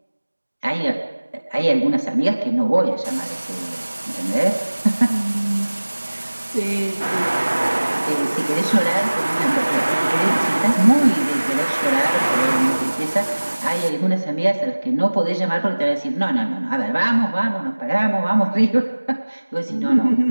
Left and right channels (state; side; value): inverted; both; correlation -1.00